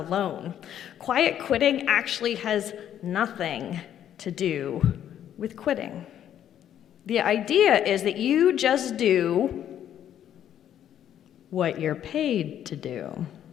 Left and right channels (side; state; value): right; quieter; 10.4 dB